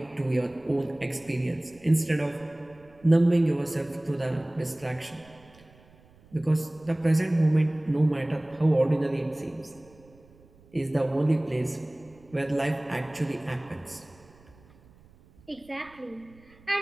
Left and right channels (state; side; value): noise; right; rumble, 27 dB below the sound